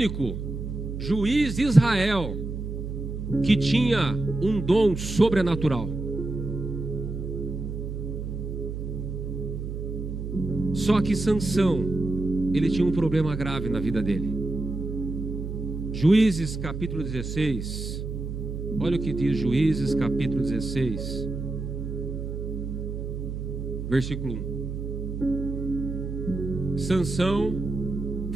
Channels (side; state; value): right; noise; hum, 5 dB below the sound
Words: juiz de Israel que tinha um dom sobrenatural. Só que Sansão, ele tinha um problema grave na vida dele. Juízes capítulo 16. Olha o que diz Juízes capítulo 16, versículo 1. Sansão